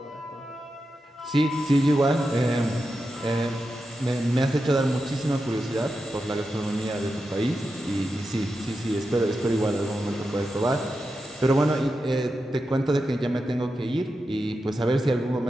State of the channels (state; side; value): normal; both; correlation 0.89